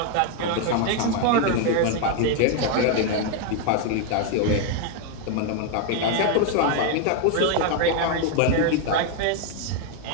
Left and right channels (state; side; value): different; both; correlation 0.01